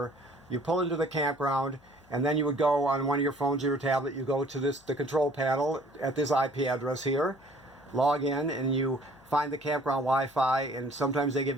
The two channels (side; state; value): left; noise; hum, 30 dB below the sound